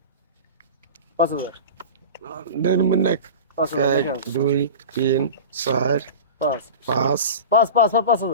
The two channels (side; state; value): both; inverted; correlation -0.31